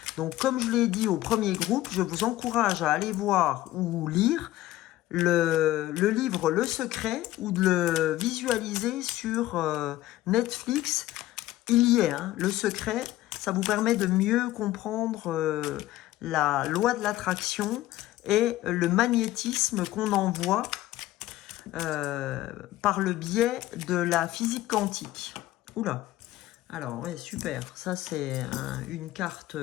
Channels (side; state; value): right; quieter; 15.7 dB